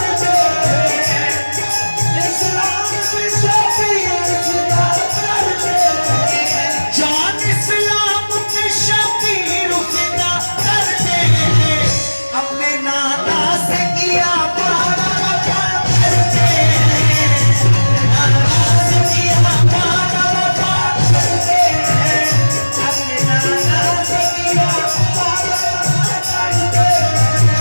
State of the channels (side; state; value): both; inverted; correlation -1.00